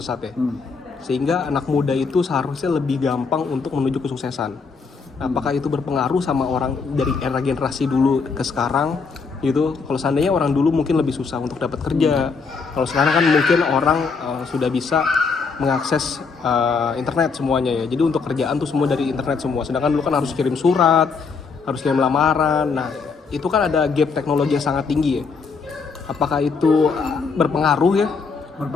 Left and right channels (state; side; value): quieter; right; 5.0 dB